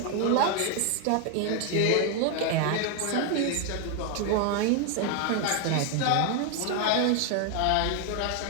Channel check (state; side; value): different; both; correlation 0.01